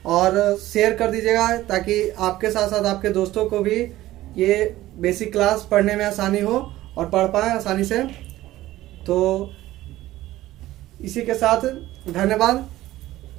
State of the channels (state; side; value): quieter; left; 15.7 dB